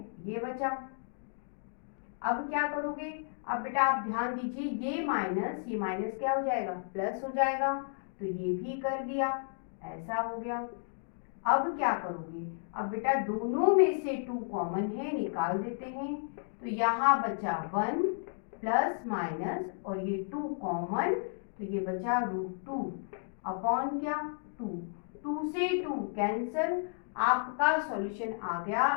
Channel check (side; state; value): right; silent; digital silence